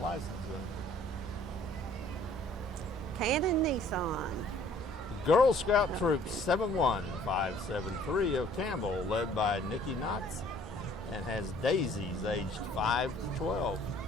license. Cannon Nissan. The Girl Scout Troop 71573 of Campbell, led by Nikki Knotts, and has daisies aged 5 to 12.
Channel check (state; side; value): normal; both; correlation 0.56